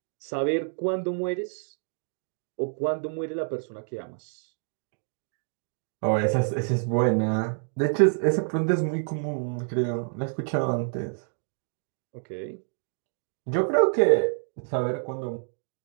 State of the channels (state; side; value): silent; left; 59 dB below the other